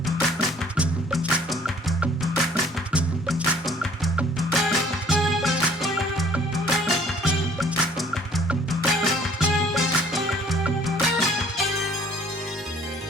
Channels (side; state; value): both; normal; correlation 0.56